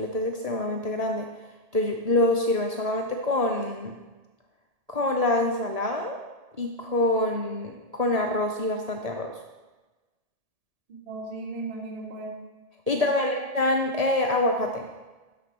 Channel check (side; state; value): left; late; 1.7 ms